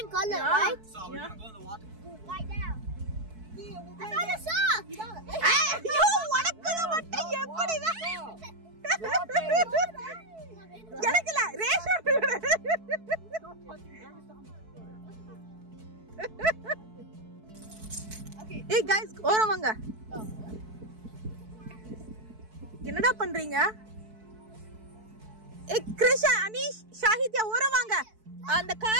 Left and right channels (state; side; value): late; left; 4.6 ms